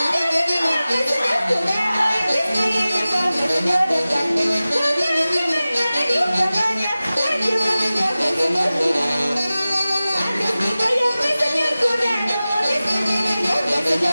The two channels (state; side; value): inverted; both; correlation -0.97